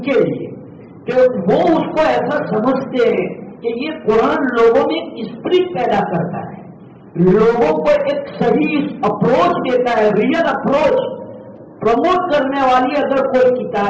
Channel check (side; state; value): both; identical; correlation 1.00